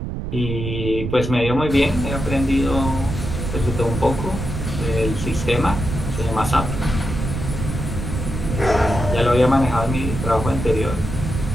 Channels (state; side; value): noise; right; rumble, 5 dB below the sound